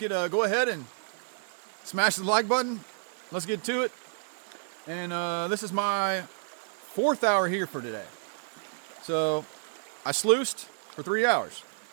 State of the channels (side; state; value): left; silent; digital silence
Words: go ahead and smash the like button, let's get to it. And this is my 4th hour here for today. So I sluiced for 3 hours